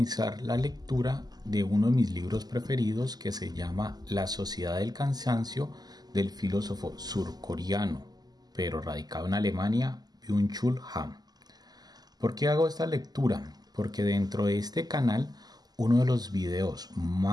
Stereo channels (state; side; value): late; left; 0.20 ms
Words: la lectura de uno de mis libros preferidos que se llama La Sociedad del Cansancio del filósofo surcoreano, pero radicado en Alemania, Byung-Chul Han. ¿Por qué hago esta lectura? Porque dentro de este canal uno de los videos